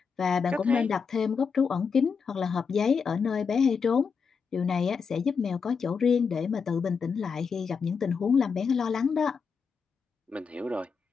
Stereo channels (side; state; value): right; quieter; 5.8 dB